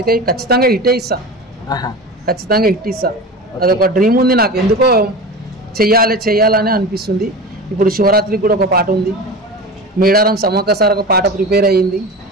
ఖచ్చితంగా హిట్ ఇస్తా, ఖచ్చితంగా హిట్ ఇస్తా. అదొక డ్రీమ్ ఉంది నాకు, ఎందుకో చెయ్యాలని అనిపిస్తుంది. ఇప్పుడు శివరాత్రికి కూడా ఒక పాట ఉంది. మేడారం సమ్మక్క సార్ ఒక పాట ప్రిపేర్ అయ్యింది.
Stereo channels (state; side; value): normal; both; correlation 0.30